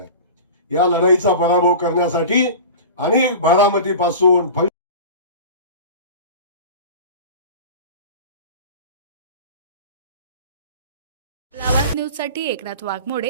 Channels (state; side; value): inverted; both; correlation -0.34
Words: या लढाईचा पराभव करण्यासाठी अनेक बारामतीपासून लावाद न्यूजसाठी एकनाथ